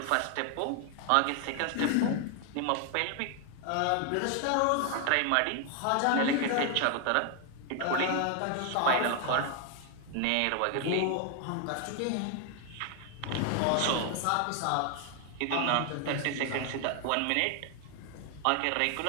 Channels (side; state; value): both; different; correlation 0.00